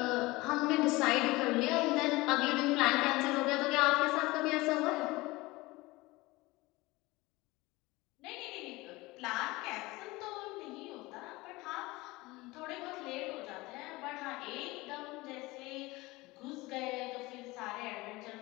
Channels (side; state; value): right; quieter; 21.4 dB